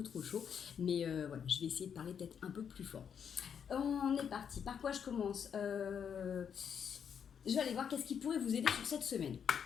chaud. Mais voilà, je vais essayer de parler peut-être un peu plus fort. On est parti. Par quoi je commence Je vais aller voir qu'est-ce qui pourrait vous aider sur cette semaine.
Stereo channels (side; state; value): right; quieter; 7.6 dB